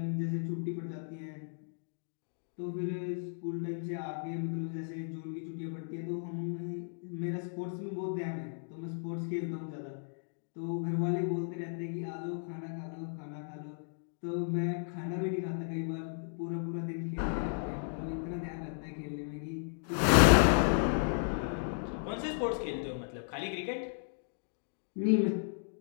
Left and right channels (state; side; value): silent; right; digital silence